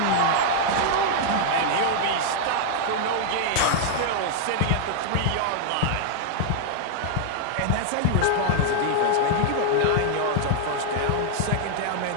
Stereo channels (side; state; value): both; different; correlation 0.00